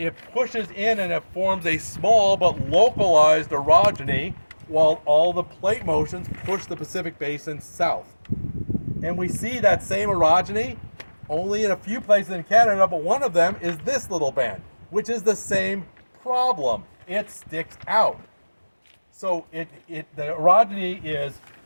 pushes in and it forms a small but localized orogeny while all the plate motions push the Pacific Basin south. And we see that same orogeny only in a few places in Canada, but one of them is this little band, which is the same problem. It sticks out. So the orogeny is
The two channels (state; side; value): inverted; both; correlation -1.00